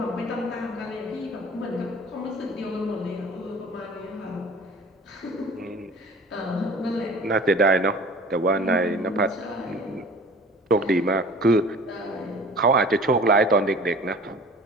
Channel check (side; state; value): both; normal; correlation 0.44